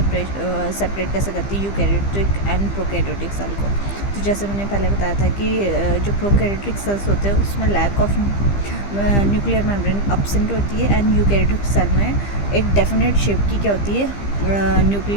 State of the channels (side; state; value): right; late; 15 ms